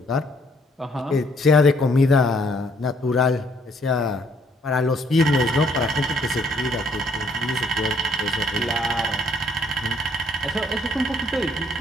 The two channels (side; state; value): both; normal; correlation 0.65